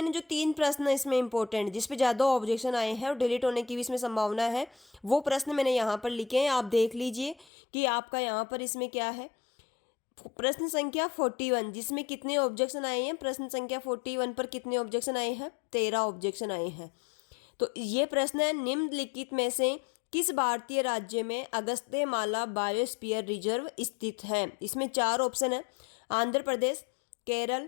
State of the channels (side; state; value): right; drops out; at 7.5 s